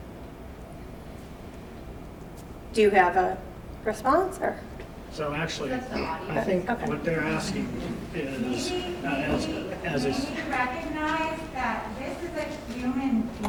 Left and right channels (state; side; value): identical; both; correlation 1.00